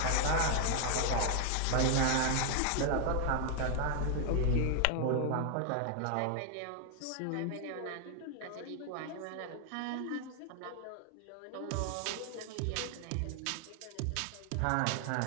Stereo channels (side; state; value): both; different; correlation 0.00